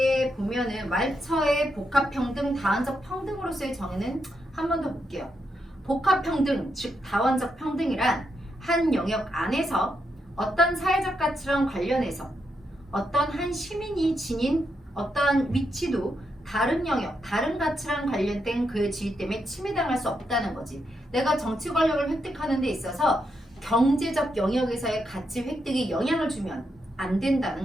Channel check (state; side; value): normal; both; correlation 0.82